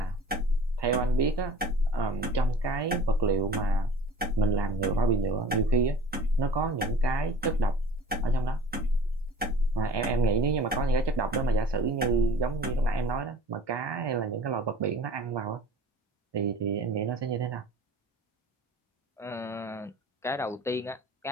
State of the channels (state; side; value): normal; both; correlation 0.44